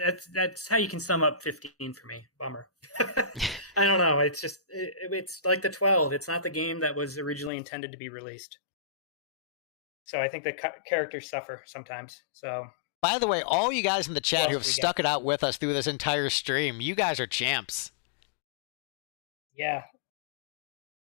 that's how you can sum up 15 for me. Bummer. I don't know. It's just it's like the 12. It's not the game that was originally intended to be released. So I think the characters suffer sometimes. So, by the way, all you guys in the chat who have stuck it out with us through this entire stream, you guys are champs. Yeah.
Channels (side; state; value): right; drops out; at 7.5 s